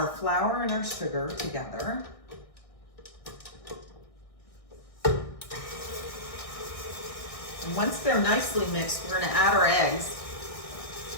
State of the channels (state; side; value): late; right; 1.6 ms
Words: flour and our sugar together. And once they're nicely mixed, we're gonna add our eggs.